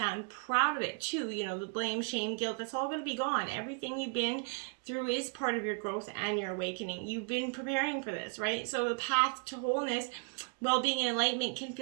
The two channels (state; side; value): quieter; left; 38.1 dB